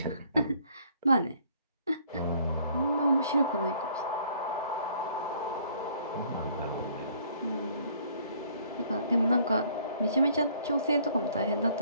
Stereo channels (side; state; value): both; inverted; correlation -0.61